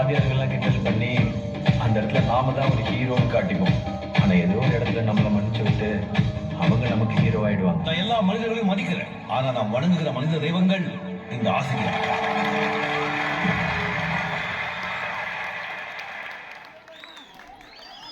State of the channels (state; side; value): identical; both; correlation 1.00